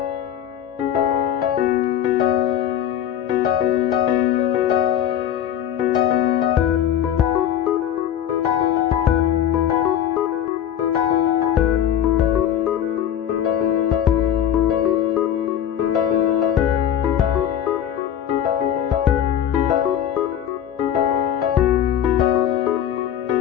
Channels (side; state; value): right; quieter; 10.1 dB